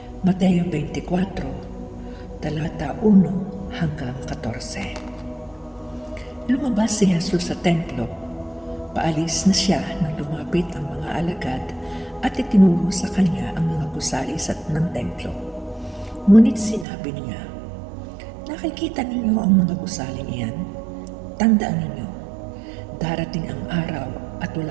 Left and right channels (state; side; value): drops out; left; at 16.9 s